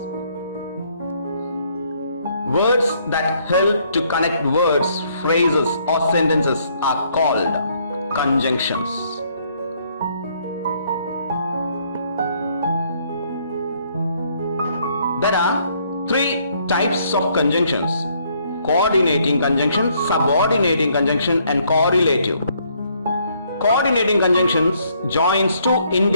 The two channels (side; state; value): both; inverted; correlation -0.68